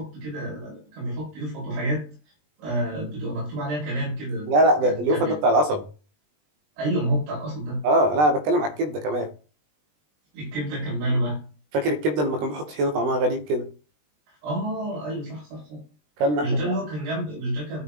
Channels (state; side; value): late; left; 20 ms